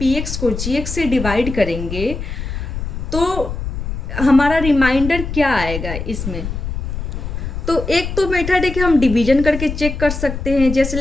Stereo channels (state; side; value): noise; left; rumble, 5 dB below the sound